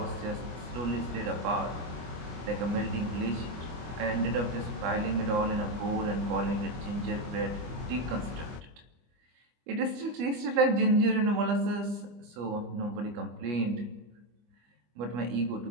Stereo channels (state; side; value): late; left; 25 ms